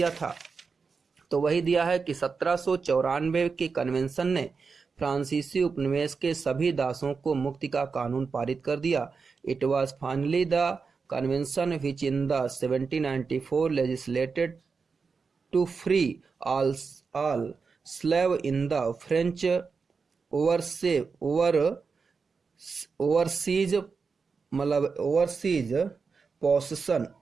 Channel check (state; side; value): quieter; left; 5.0 dB